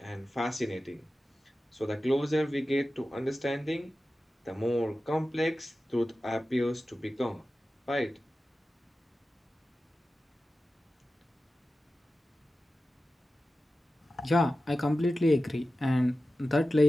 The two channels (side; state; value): both; normal; correlation 0.94